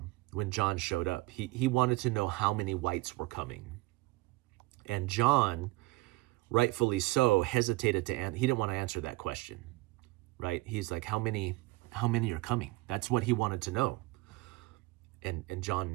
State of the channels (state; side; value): quieter; left; 21.3 dB